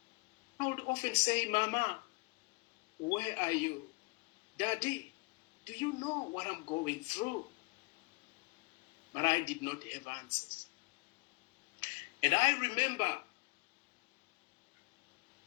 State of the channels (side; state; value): right; quieter; 27.4 dB